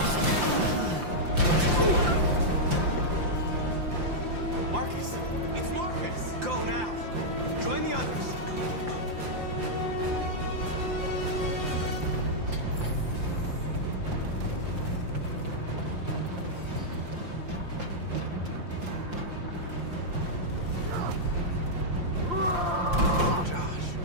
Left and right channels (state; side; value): late; left; 5.7 ms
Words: Marcus! It's Marcus! Go now! Join the others!